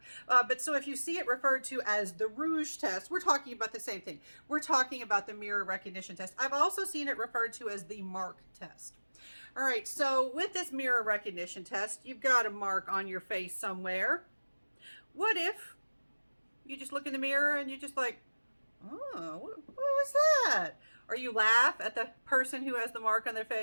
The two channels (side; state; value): both; inverted; correlation -1.00